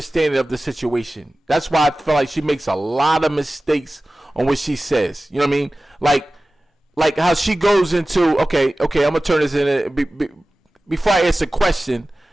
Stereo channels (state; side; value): normal; both; correlation 0.97